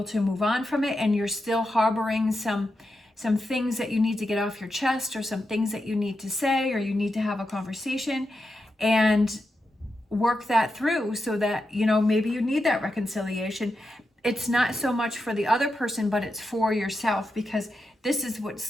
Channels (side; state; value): both; normal; correlation 0.88